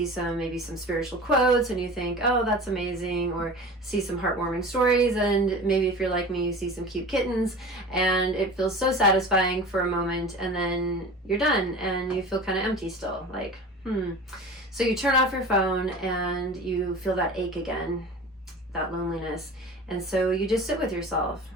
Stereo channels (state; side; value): normal; both; correlation 0.36